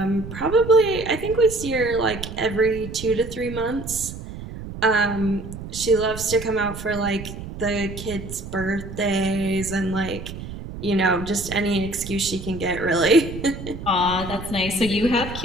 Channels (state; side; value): noise; right; rumble, 10 dB below the sound